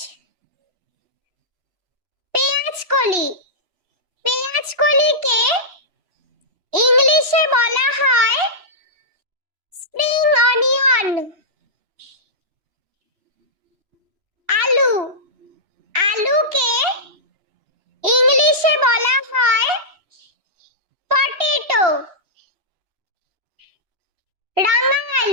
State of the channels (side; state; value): left; late; 3.0 ms